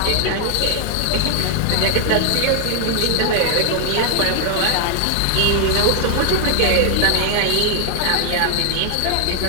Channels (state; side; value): different; both; correlation 0.00